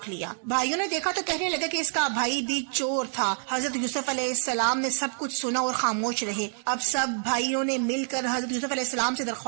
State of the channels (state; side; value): silent; left; 60 dB below the other